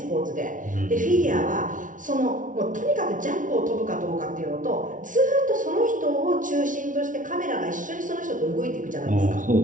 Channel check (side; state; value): left; late; 0.38 ms